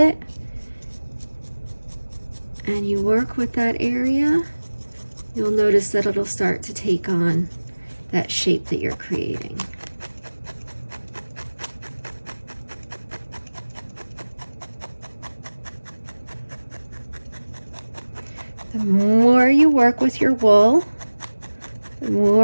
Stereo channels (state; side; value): inverted; both; correlation -1.00